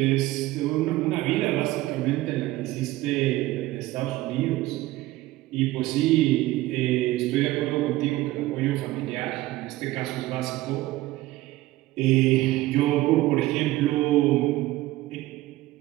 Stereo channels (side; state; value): left; quieter; 17.3 dB